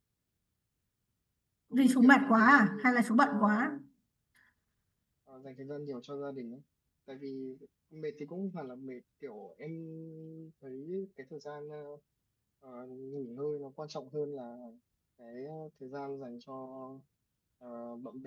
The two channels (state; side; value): identical; both; correlation 1.00